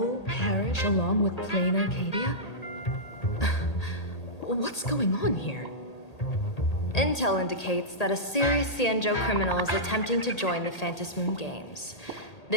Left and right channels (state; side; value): late; right; 1.8 ms